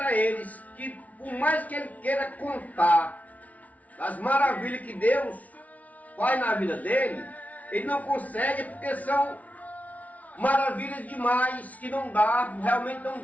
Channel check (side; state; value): right; late; 0.070 ms